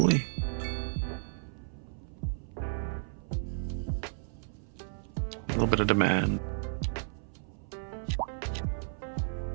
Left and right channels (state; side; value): silent; left; 56 dB below the other